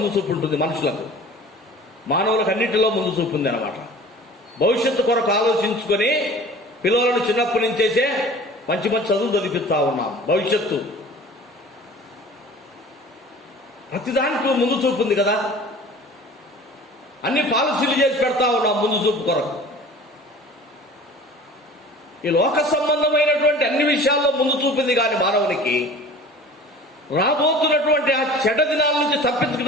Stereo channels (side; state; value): both; normal; correlation 0.43